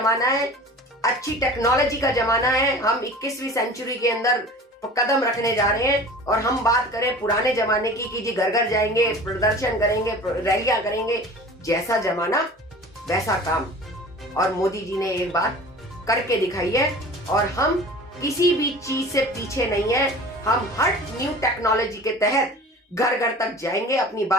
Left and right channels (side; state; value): both; normal; correlation 0.40